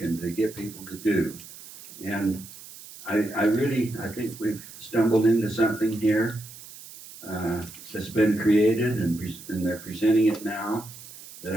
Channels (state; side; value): noise; right; hiss, 17 dB below the sound